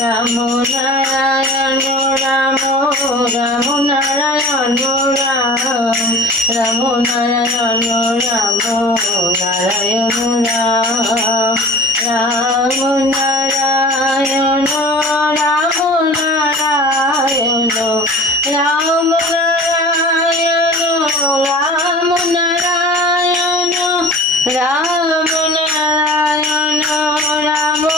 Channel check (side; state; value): both; normal; correlation 0.41